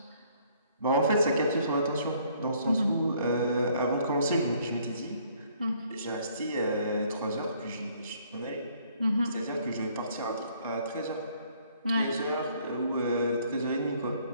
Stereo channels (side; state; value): both; inverted; correlation -0.63